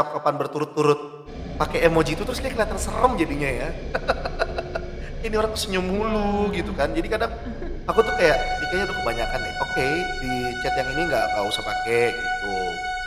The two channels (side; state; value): both; identical; correlation 1.00